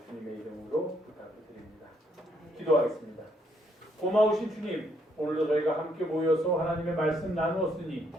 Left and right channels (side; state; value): both; normal; correlation 0.72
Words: 주님의 이름으로 부탁을 드립니다. 기도하겠습니다. 고마우신 주님, 오늘도 저희가 함께 모여서 하나님의 말씀 나누었으니